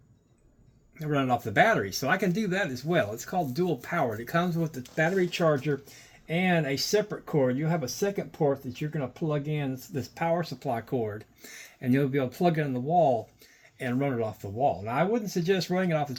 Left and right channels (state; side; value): identical; both; correlation 1.00